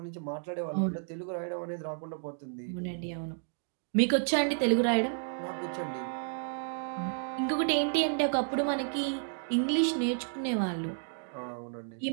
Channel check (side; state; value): left; silent; digital silence